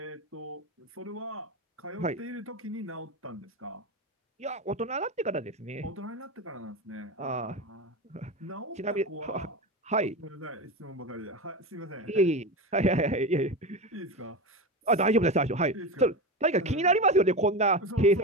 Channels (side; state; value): both; normal; correlation 0.21